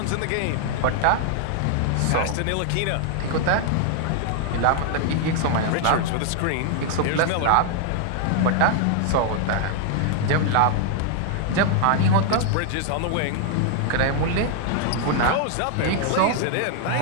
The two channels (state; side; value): different; both; correlation 0.00